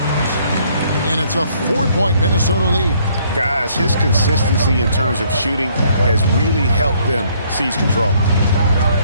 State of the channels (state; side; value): inverted; both; correlation -0.65